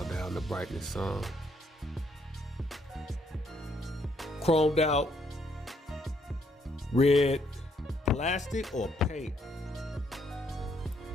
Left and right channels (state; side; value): normal; both; correlation 0.71